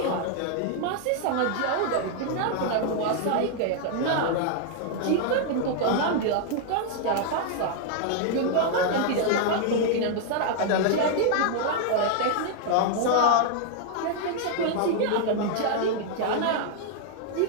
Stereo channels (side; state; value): both; different; correlation 0.00